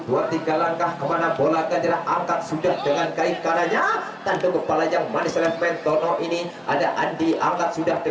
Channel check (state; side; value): identical; both; correlation 1.00